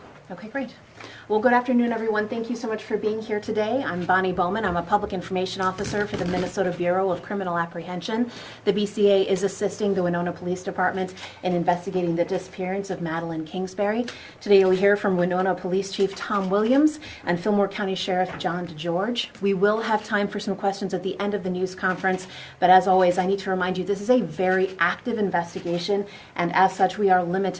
Okay, great. Well, good afternoon, everyone. Thank you so much for being here today. I'm Bonnie Bowman. I'm a Public Information Officer for the Minnesota Bureau of Criminal Apprehension. The BCA is assisting the Winona Police Department in investigating the disappearance of Madeline Kingsbury. Today you'll hear from Winona Police Chief Tom Williams and Fillmore County Sheriff John DeGeorge. We will have time for some questions at the end of the news conference, but as always, I need to remind you this is a very active investigation, and as such, we are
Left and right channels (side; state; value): both; identical; correlation 1.00